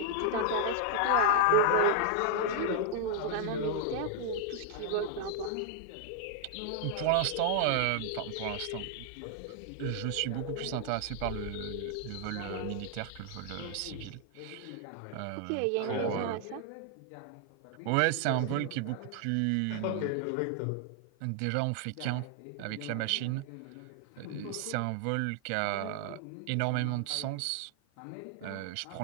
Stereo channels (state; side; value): different; both; correlation 0.00